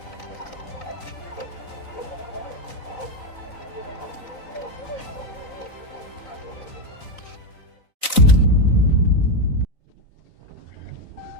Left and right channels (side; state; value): right; late; 3.9 ms